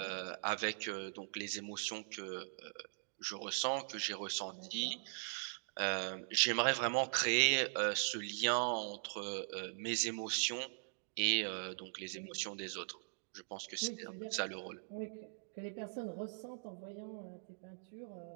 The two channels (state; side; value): silent; left; digital silence